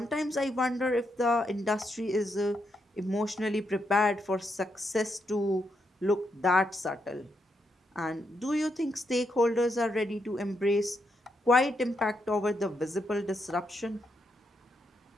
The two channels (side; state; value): both; normal; correlation 0.81